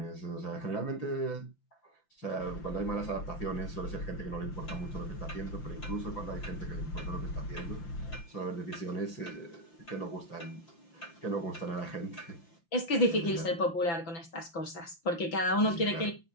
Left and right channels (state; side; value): late; right; 5.9 ms